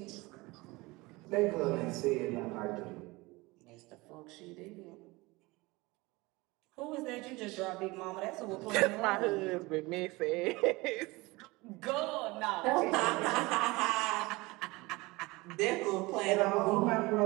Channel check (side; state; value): left; quieter; 22.7 dB